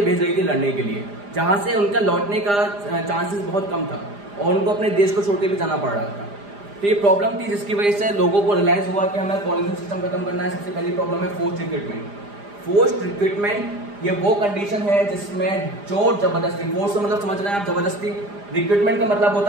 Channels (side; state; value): left; late; 4.9 ms